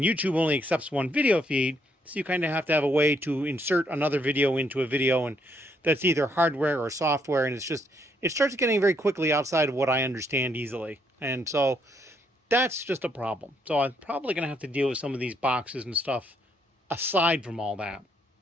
YouTube only accepts one video feed, so you kind of have to have a way to insert another video into a video, and that's either hardware or software, and it starts getting very quickly outside of what I understand easily. And so that's just a problem. So I'm probably going to have to deal with some of these boxes and stuff aside from all that.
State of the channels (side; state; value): both; normal; correlation 0.72